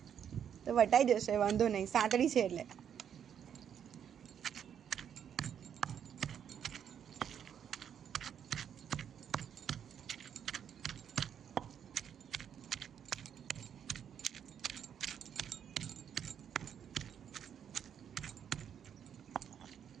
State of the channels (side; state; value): left; quieter; 8.6 dB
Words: તો વટાઈ જશે, વાંધો નહીં, સાંતળી છે એટલે.